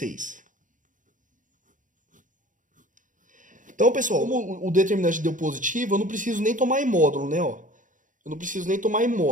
Então, pessoal, como o determinante deu positivo, eu não preciso nem tomar em módulo, né? Ó. Eu não preciso nem tomar em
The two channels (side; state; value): left; late; 0.38 ms